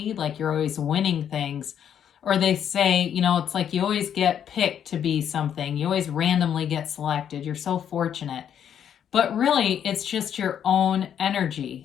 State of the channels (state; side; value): quieter; right; 9.0 dB